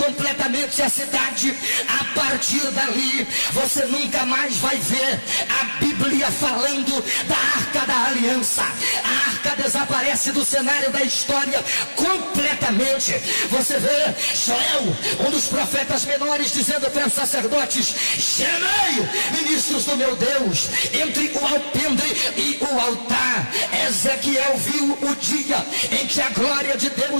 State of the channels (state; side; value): inverted; both; correlation -1.00